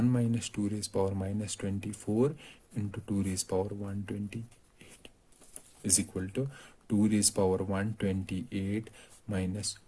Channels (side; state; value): both; identical; correlation 1.00